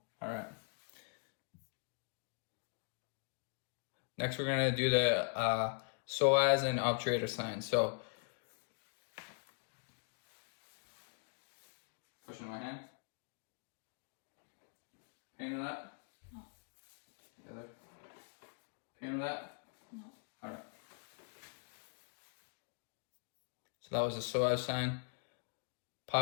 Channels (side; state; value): right; quieter; 37.2 dB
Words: All right. Next, we're gonna do the psoas and obturator sign. So, pushing my hand. Pain with that? No. The other. Pain with that? No. All right. So that was the psoas sign.